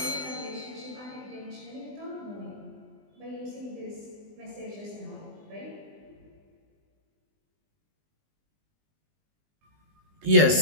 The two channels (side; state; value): left; late; 20 ms